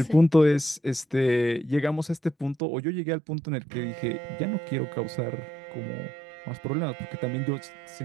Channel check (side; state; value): left; drops out; at 2.6 s